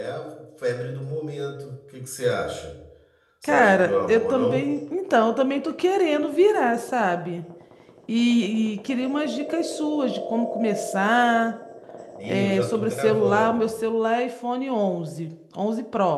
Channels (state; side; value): identical; both; correlation 1.00